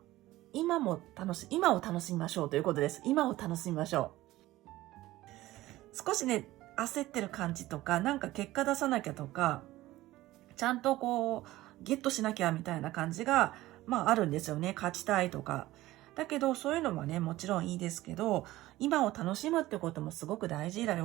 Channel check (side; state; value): left; quieter; 16.8 dB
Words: を楽しみましょうということです。今を楽しみましょう。少しね、焦ってる感じとか、なんか結果出さなきゃとか、ちゃんとこう、ゲットしなきゃみたいな感じが、あるんですよね。勝ちたいとか。だけど、そういうのもね、もちろんいいですけど、今を楽しむってこともすごく大事だ